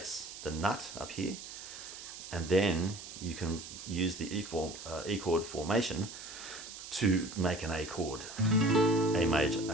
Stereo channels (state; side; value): noise; right; hiss, 12 dB below the sound